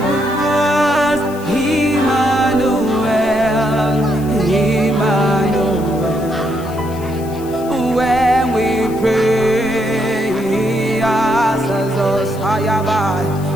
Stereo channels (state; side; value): noise; left; hiss, 20 dB below the sound